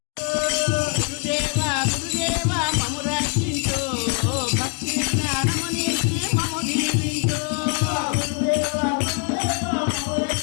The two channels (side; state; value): right; quieter; 33.7 dB